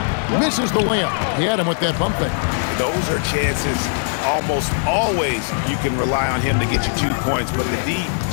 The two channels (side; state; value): right; silent; 66 dB below the other